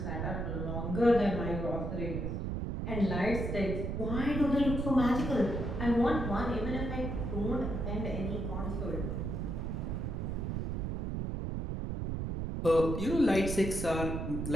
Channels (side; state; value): right; noise; rumble, 2 dB below the sound